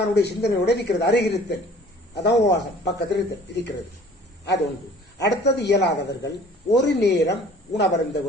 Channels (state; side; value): normal; both; correlation 0.50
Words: சிந்தனையோட இருக்கிறது. அருகிருத்தல், அதான் உபவாசம். பக்கத்தில் இருக்கிறது. அது ஒன்று. அடுத்தது இயலாதவர்கள் ஒரு நேரம் உணவருந்த